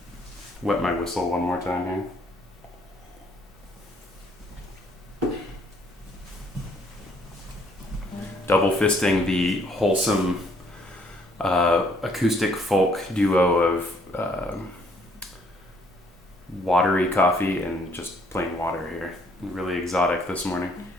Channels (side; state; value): both; normal; correlation 0.65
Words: wet my whistle one more time here. Double fisting the wholesome acoustic folk duo of watery coffee and just plain water here. Really exotic this morning.